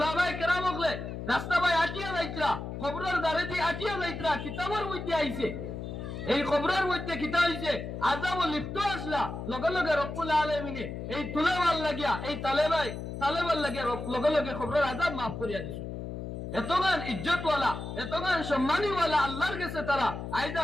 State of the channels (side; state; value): left; noise; hum, 7 dB below the sound